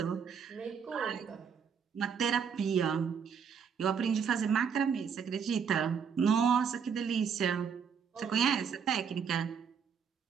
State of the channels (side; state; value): left; quieter; 6.8 dB